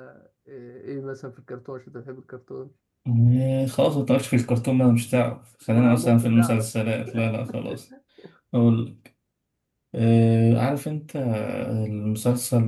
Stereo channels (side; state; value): both; identical; correlation 1.00